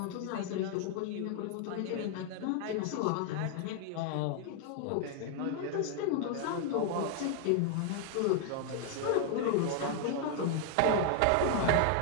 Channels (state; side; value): different; both; correlation 0.00